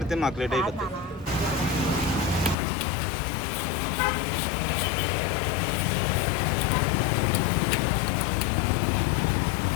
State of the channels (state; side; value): drops out; right; at 2.6 s